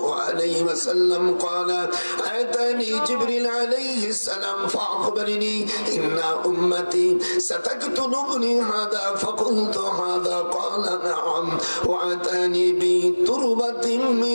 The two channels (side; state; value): both; inverted; correlation -1.00